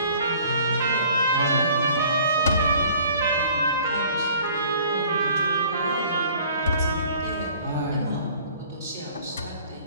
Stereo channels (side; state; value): both; inverted; correlation -0.52